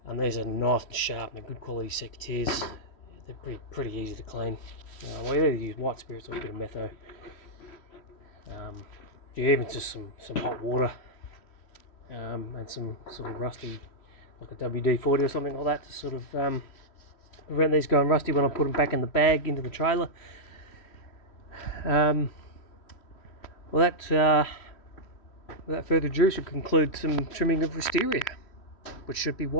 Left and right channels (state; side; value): late; right; 3.1 ms